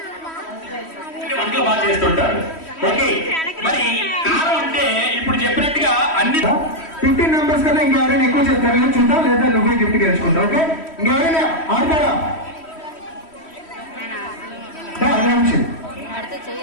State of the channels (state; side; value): late; right; 3.1 ms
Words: వంటలు బాగా చేస్తుంటారు. ఓకే, మరి కారం అంటే ఇప్పుడు చెప్పినట్టుగా అన్ని 15 మెంబర్స్ కన్నా ఇంకెవరైనా ఎక్కువ చెప్తారు నేను చూద్దాం, లేదా నువ్వే గిఫ్ట్ గెలుచుకుంటావు. ఓకే, ఇంకెవరైనా ఆడతారా?